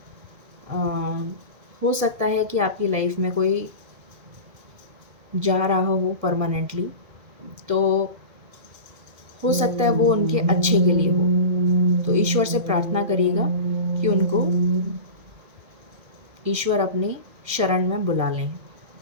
हो सकता है कि आपकी लाइफ में कोई जा रहा हो परमानेंटली, तो हो सकता है वो उनके अच्छे के लिए हो। तो ईश्वर से प्रार्थना करिएगा कि उनको ईश्वर अपनी शरण में बुला लें।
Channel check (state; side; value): late; left; 1.6 ms